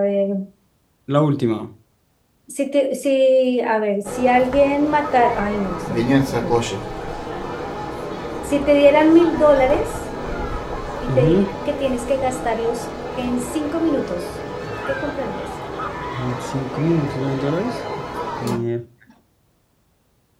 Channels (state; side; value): identical; both; correlation 1.00